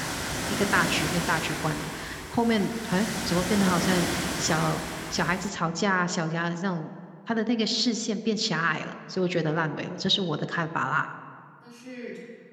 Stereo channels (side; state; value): both; identical; correlation 1.00